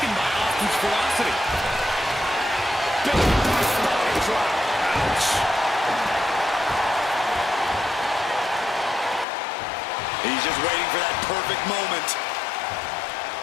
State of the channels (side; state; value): right; drops out; at 9.2 s